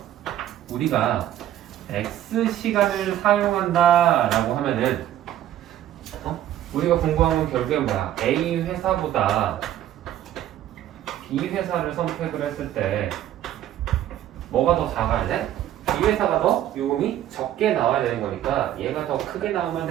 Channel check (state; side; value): quieter; left; 12.1 dB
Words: 우리가 X 시간을 사용한다라고 하면은 우리가 공부한 건 결국에 뭐야? A 회사보다 B 회사를 선택을 했을 때 뭐가 더 작아야 돼? B 회사가 더 요금이 적게 나와야 되는 거니까 얘가 더 크게 나오면